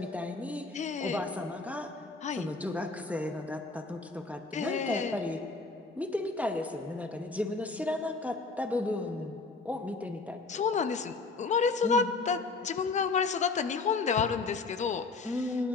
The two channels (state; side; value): quieter; right; 3.9 dB